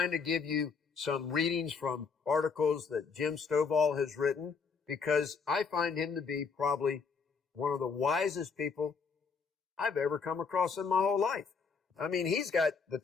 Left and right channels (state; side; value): quieter; right; 5.4 dB